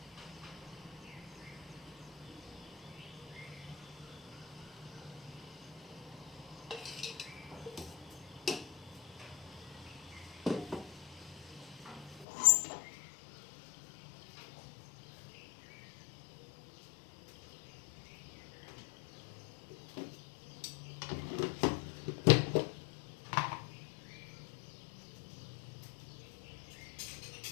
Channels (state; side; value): drops out; right; at 12.2 s